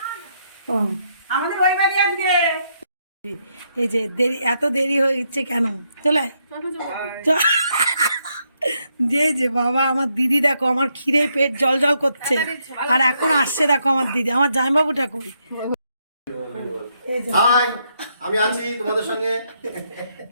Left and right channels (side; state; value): both; inverted; correlation -0.77